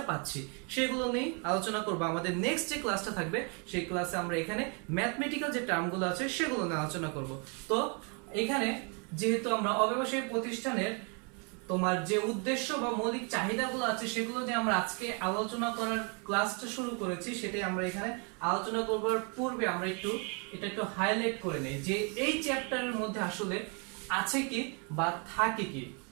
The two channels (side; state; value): left; quieter; 35.7 dB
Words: পাচ্ছি, সেগুলো নিয়ে আলোচনা করব। আমাদের নেক্সট যে ক্লাসটা থাকবে, সেই ক্লাসে আমরা এখানে ম্যাথমেটিক্যাল যে টার্মগুলো আছে, সেগুলো নিয়ে আলোচনা করব। তো এখানে যেহেতু আমরা অব্যবসায়ী প্রতিষ্ঠানের তোমার যে উদ্দেশ্য বা মৌলিক চাহিদাগুলো আছে, সেগুলো নিয়ে আমরা আজকে আলোচনা করার ক্লাসটা শুরু করেছি, সেটাই আমরা এখানে আলোচনা করবার পূর্বে আমরা এটা একটু হাইলাইট করে নেই যে এই চ্যাপ্টারের মধ্যে আসলে আছে কি বা থাকে কি।